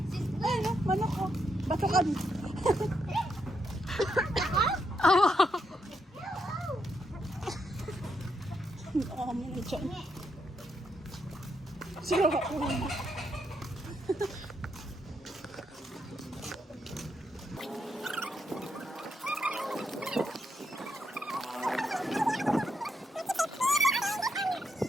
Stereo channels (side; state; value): both; normal; correlation 0.80